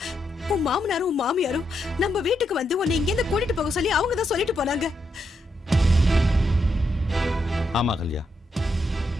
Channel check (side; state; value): both; normal; correlation 0.81